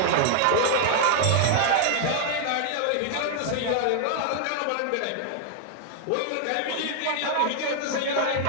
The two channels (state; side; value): different; both; correlation 0.00